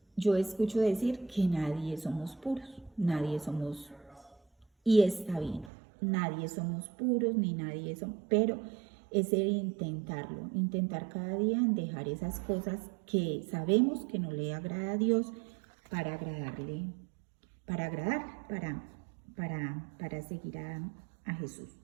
yo escucho decir que nadie somos puros, y está bien, nadie somos puros, ni nadie somos, pero es el intentar cada día en dejar esas cosas que sabemos que no le agrada a Dios para agradarle, para seguir a Jesús.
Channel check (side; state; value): left; drops out; at 5.7 s